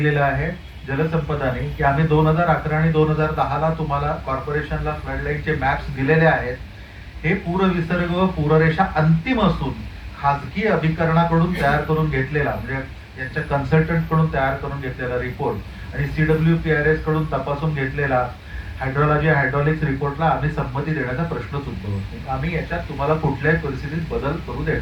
आहे जलसंपदाने की आम्ही 2011 आणि 2010 ला तुम्हाला कॉर्पोरेशनला फ्लडलाईनचे मॅप्स दिलेले आहेत. हे पूरविसर्ग व पूररेषा अंतिम असून खासगी अभिकरणाकडून तयार करून घेतलेला, म्हणजे यांच्या कन्सल्टंट कडून तयार करून घेतलेला रिपोर्ट आणि CWPRS कडून तपासून घेतलेला हायड्रोलॉजी हायड्रॉलिक्स रिपोर्टला आम्ही संमती देण्याचा प्रश्नच उद्भवत नाही. आम्ही याच्यात तुम्हाला कुठल्याही परिस्थितीत बदल करू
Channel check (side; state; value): both; identical; correlation 1.00